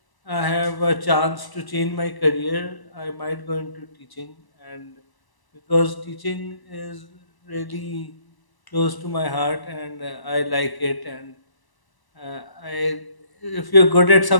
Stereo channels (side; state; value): right; late; 1.0 ms